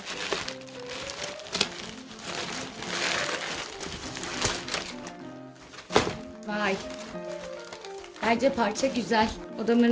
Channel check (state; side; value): identical; both; correlation 1.00